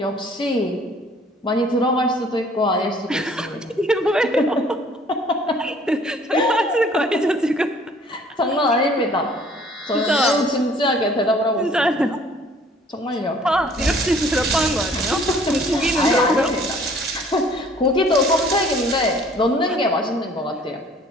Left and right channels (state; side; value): normal; both; correlation 0.55